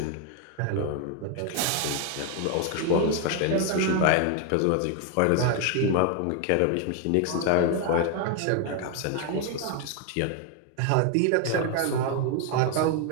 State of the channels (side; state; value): both; different; correlation 0.01